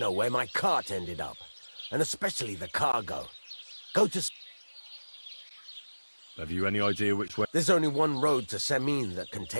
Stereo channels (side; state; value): both; inverted; correlation -1.00